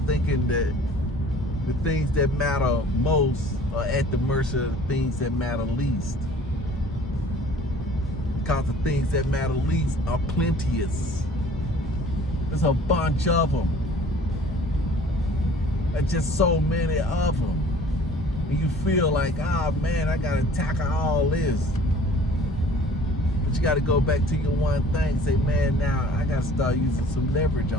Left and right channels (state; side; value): normal; both; correlation 0.50